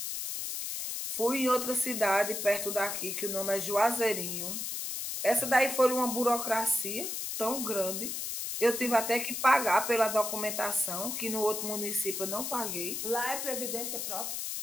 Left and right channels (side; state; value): left; noise; hiss, 4 dB below the sound